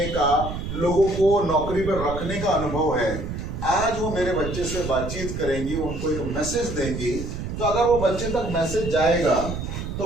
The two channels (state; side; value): noise; right; rumble, 6 dB below the sound